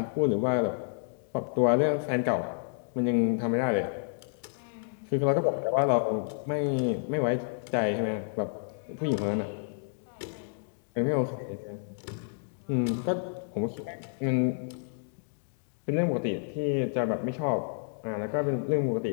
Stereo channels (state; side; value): silent; right; digital silence